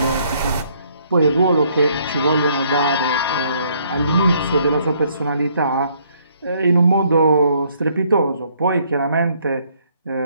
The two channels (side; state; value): both; inverted; correlation -0.67